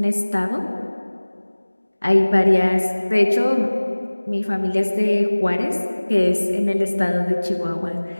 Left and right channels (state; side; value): inverted; both; correlation -1.00